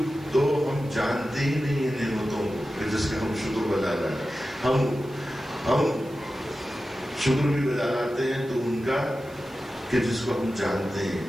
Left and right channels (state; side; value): noise; right; hiss, 25 dB below the sound